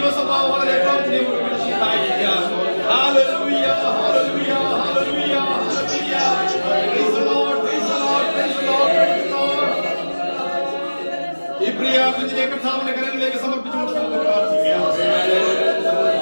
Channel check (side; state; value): both; inverted; correlation -1.00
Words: വളരെ പ്രാർത്ഥനയോടുകൂടി സഹായിക്കാം. Hallelujah, hallelujah, hallelujah, hallelujah. Praise the Lord, praise the Lord, praise the Lord, praise the Lord. ഈ പ്രിയ കുഞ്ഞിനെ കർത്താവിന്റെ കരങ്ങളിലേക്ക് സമർപ്പിച്ചുകൊണ്ട് നമുക്ക് പ്രാർത്ഥിക്കാം.